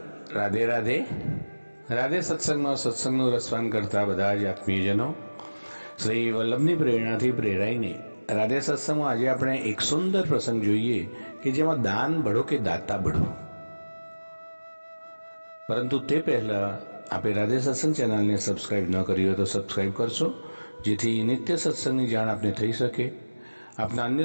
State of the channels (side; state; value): both; inverted; correlation -1.00